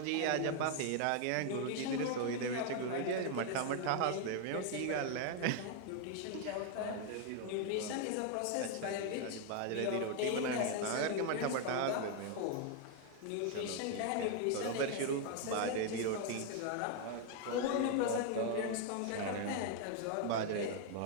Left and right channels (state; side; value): different; both; correlation 0.00